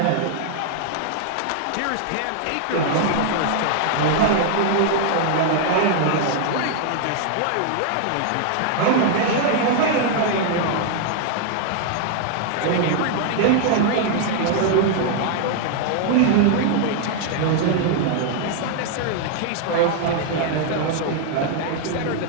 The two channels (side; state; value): both; different; correlation 0.00